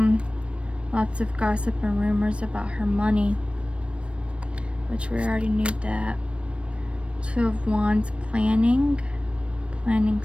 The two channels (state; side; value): late; left; 0.060 ms